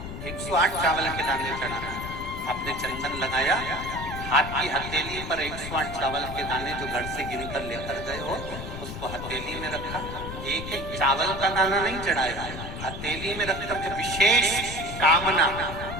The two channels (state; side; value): noise; left; rumble, 8 dB below the sound